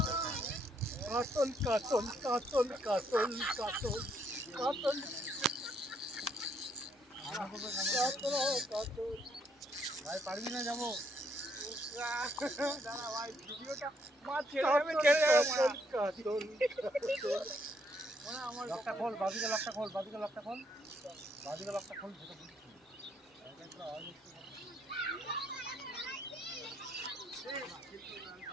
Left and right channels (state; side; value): normal; both; correlation 0.72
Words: কাটল কাটল কাটল কাটল কাটল কাটল ভাই পারবি না যাবো দাঁড়া ভাই ভিডিওটা মার ছেড়ে যাবে কাটল আমার লকটা খোল বাদিকে লকটা খোল বাদিকে লকটা খোল বাদিকে লকটা খোল যেটা বুঝছি এটা আওয়াজ